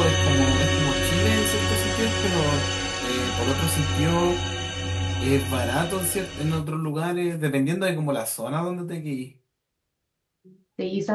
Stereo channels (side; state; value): both; identical; correlation 1.00